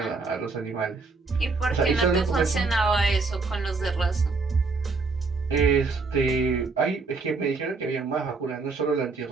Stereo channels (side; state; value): left; quieter; 4.1 dB